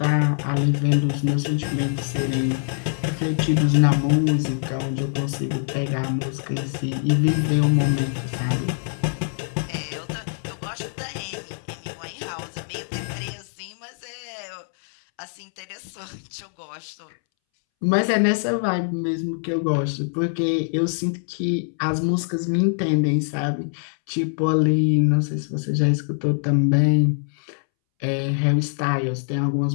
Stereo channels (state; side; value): silent; right; 63 dB below the other